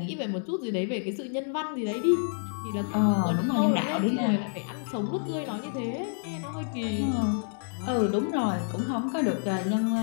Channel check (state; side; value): silent; right; 59 dB below the other